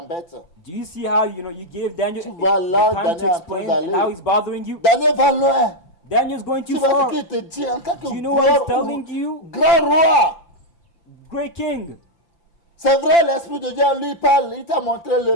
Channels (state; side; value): late; right; 5.8 ms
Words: Tu vois là, Daniel est en train d'aller. Daniel va loin. Tu vois ce qu'il te dit en tant que grand roi. C'est vrai, l'Esprit de Dieu lui parle, il t'a montré le